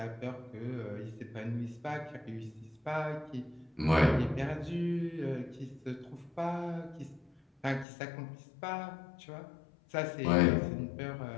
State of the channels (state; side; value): drops out; right; at 7.9 s